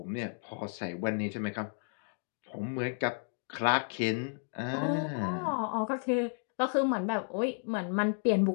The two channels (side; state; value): right; silent; 56 dB below the other